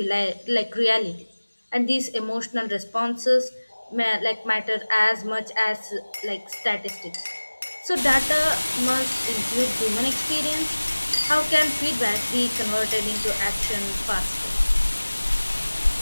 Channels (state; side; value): inverted; both; correlation -1.00